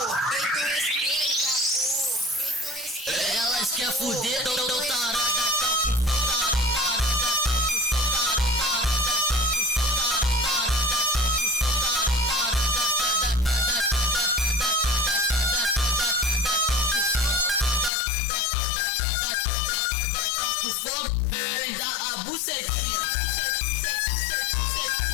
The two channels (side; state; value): right; drops out; at 17.9 s